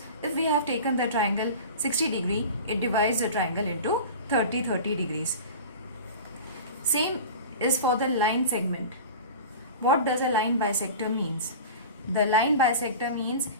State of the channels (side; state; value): both; inverted; correlation -0.34